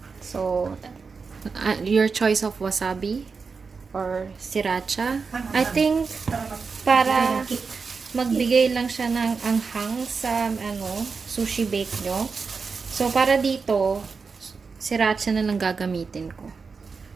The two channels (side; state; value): left; quieter; 5.0 dB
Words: So, your choice of wasabi or siracha. I think, para magbigay lang siya ng anghang sa sushi bake nyo. So, para dito, siracha na lang gagamitin ko.